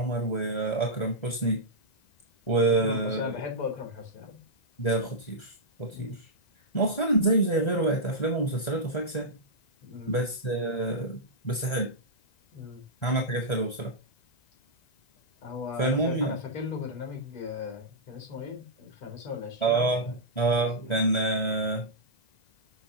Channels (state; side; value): late; right; 1.9 ms